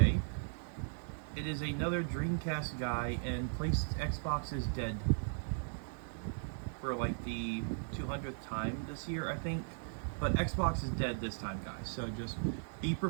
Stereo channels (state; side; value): silent; left; digital silence